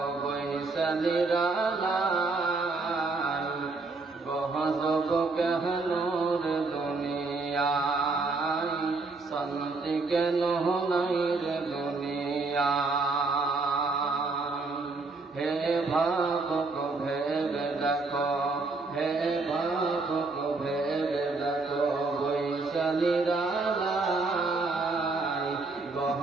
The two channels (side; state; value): left; quieter; 3.8 dB